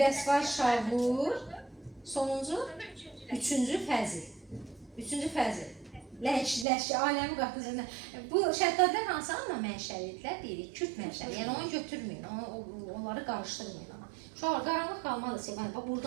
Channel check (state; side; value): drops out; left; at 6.7 s